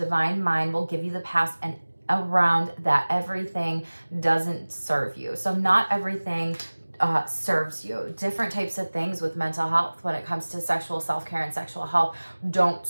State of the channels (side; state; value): both; inverted; correlation -1.00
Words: mind will give you the path and around that everything doesn't serve you. So not everything serves you. Different types of things with mental health when it comes to sexual self-care and sexual health don't